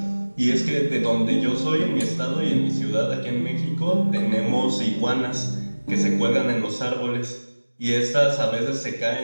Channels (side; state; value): both; inverted; correlation -1.00